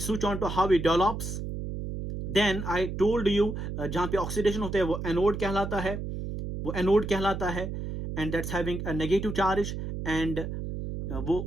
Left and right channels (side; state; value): right; noise; hum, 5 dB below the sound